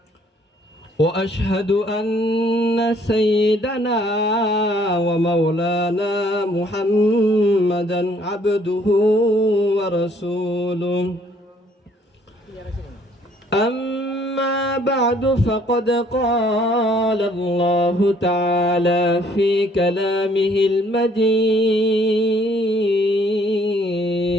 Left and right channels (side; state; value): both; normal; correlation 0.62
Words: وأشهد أن سيدنا ومولانا محمدا عبده ورسوله أما بعد فقد قال الله تعالى في كلامه المجيد